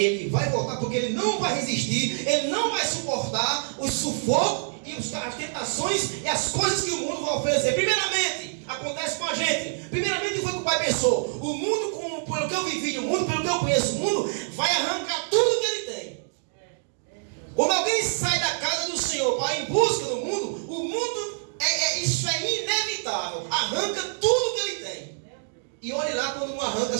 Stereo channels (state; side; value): silent; left; digital silence